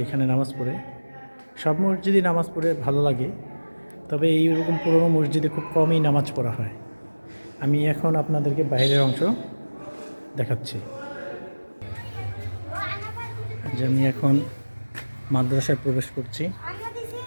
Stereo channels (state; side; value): inverted; both; correlation -1.00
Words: এখানে নামাজ পড়ে। সব মসজিদে নামাজ পড়ে ভালো লাগে, তবে এইরকম পুরনো মসজিদে খুব কমই নামাজ পড়া হয়। আমি এখন আপনাদেরকে বাইরের অংশ দেখাচ্ছি। যে আমি এখন মাদ্রাসায় প্রবেশ করছি।